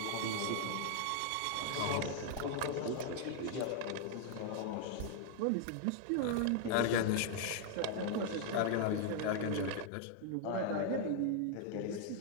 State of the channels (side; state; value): both; different; correlation 0.00